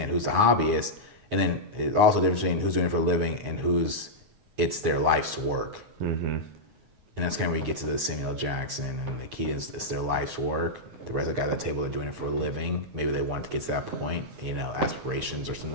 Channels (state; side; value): late; left; 9.5 ms